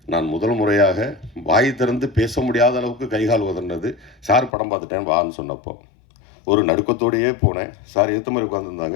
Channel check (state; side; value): drops out; right; at 4.5 s